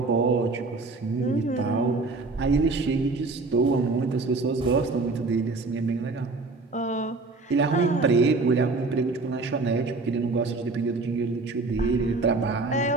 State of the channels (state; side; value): quieter; left; 3.6 dB